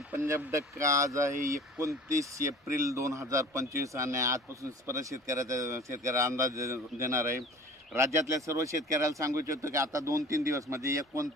पंजाब डक्का. आज आहे 29 एप्रिल 2025 आणि आजपासून परत शेतकऱ्याला अंदाज देणार आहे. राज्यातल्या सर्व शेतकऱ्याला सांगू इच्छितो की आता 2-3 दिवस म्हणजे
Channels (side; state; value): both; normal; correlation 0.43